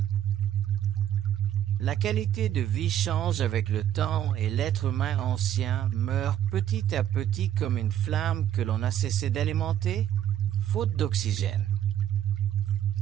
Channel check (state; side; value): quieter; left; 11.0 dB